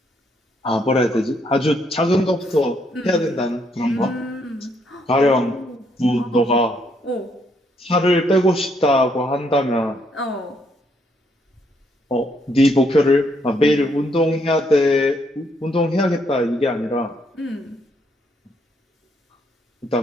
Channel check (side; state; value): both; normal; correlation 0.72